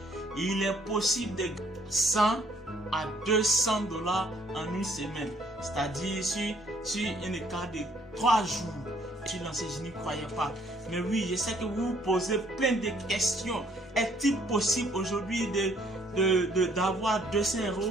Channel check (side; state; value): both; normal; correlation 0.64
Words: il est possible de 100 à 200 dollars en une semaine. C'est-à-dire sur un écart de 3 jours. Je suis lancé, je n'y croyais pas. Mais oui, je sais que vous vous posez plein de questions. Est-il possible aujourd'hui d'avoir 200